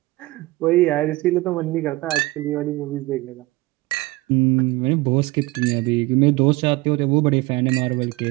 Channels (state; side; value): quieter; left; 20.6 dB